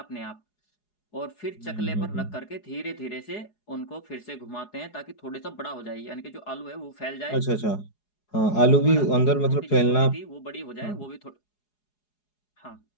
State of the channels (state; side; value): late; right; 4.8 ms